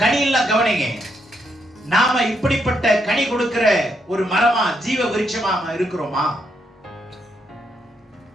கனியெல்லாம் கவனிங்க. நாம இப்படிப்பட்ட கனி கொடுக்கிற ஒரு மரமா, ஜீவ விருட்சமா இருக்கிறோமா?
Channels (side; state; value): both; normal; correlation 0.78